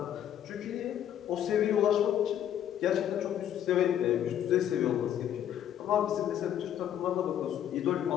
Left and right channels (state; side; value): quieter; right; 10.4 dB